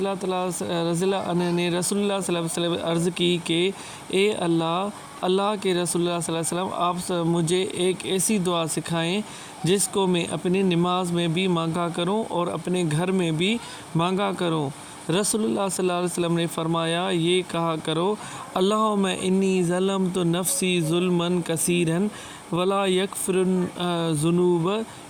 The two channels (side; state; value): both; identical; correlation 1.00